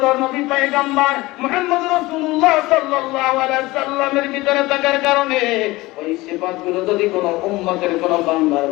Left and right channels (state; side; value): quieter; right; 20.2 dB